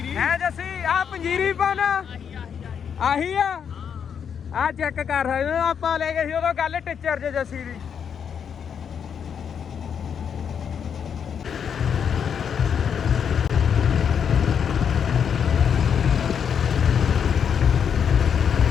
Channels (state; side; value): quieter; right; 7.5 dB